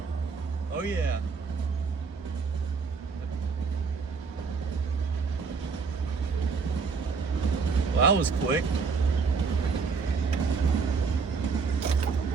Oh yeah. Well, that was quick.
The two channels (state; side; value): quieter; left; 5.1 dB